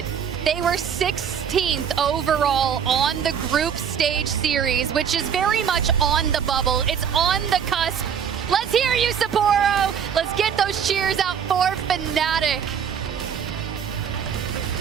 They were 16th overall on the group stage series, which is very much on the bubble. It's on the cusp. Let's hear you, Sapporo. Let's get those cheers out for Fnatic.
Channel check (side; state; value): left; quieter; 7.8 dB